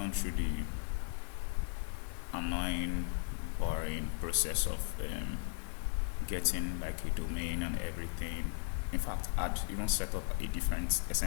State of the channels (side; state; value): right; silent; 53 dB below the other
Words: through the annoying, boring process of getting like a domain and everything. In fact, I'd even set up a different